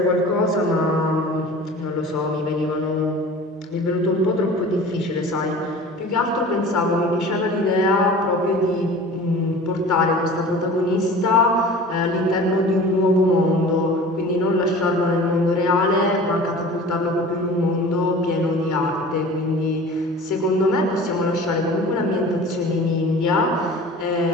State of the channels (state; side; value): normal; both; correlation 0.41